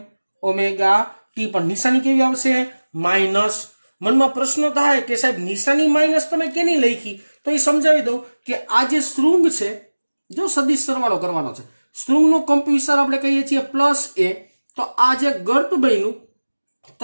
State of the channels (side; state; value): both; inverted; correlation -1.00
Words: ઓમેગા t. પણ નિશાની કેવી આવશે? માઇનસ. મનમાં પ્રશ્ન થાય કે સાહેબ નિશાની માઇનસ તમે કેની લખી? તો એ સમજાવી દઉં કે આ જે શૃંગ છે, જો સદિશ સરવાળો કરવાનો છે, શૃંગનો કંપ વિસ્તાર આપણે કહીએ છીએ પ્લસ a. તો આ જે ગર્ત બન્યું